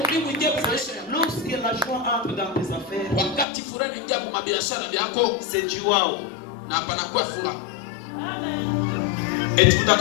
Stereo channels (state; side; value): drops out; right; at 3.5 s